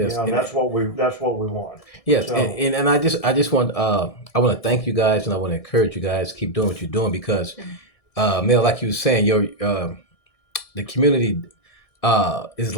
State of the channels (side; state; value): right; late; 1.6 ms